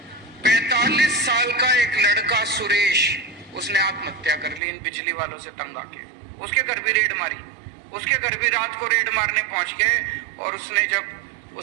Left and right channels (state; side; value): drops out; left; at 4.6 s